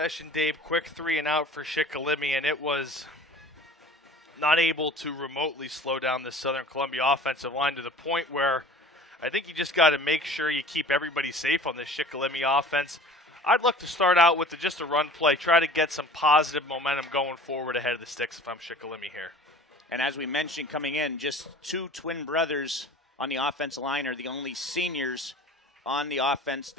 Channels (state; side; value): normal; both; correlation 0.43